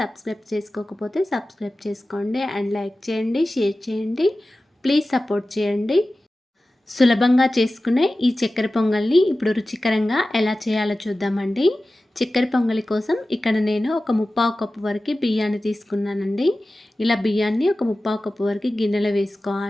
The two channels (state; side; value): normal; both; correlation 0.96